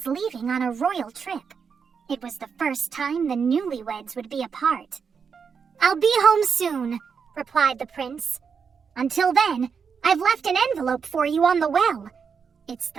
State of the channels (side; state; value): left; quieter; 6.2 dB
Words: leaving on a royal trip. It was the first time the newlyweds would be apart. "I'll be home soon," replied the prince. "Until then, I've left an envelope for you on the well. It's